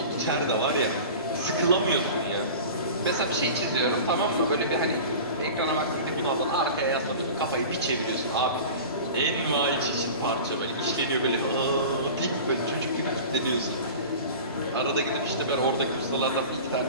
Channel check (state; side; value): inverted; both; correlation -0.36